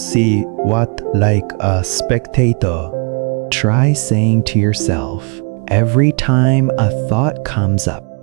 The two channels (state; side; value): quieter; left; 36.5 dB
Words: see what like a spectator. Try saying to yourself, every time a thought comes up,